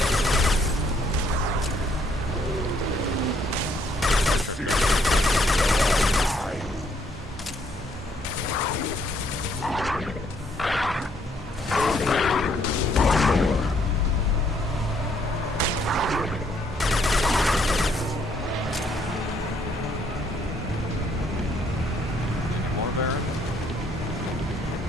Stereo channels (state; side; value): normal; both; correlation 0.68